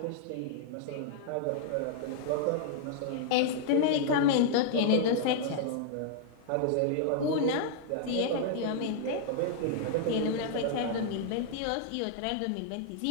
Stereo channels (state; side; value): different; both; correlation -0.01